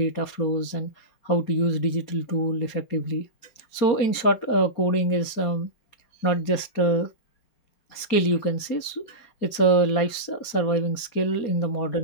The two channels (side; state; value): right; late; 4.3 ms